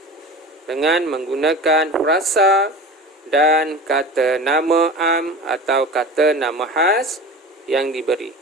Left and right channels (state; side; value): normal; both; correlation 0.33